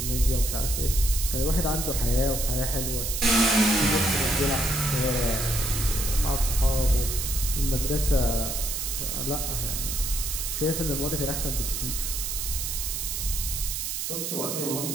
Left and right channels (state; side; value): noise; right; hiss, 3 dB below the sound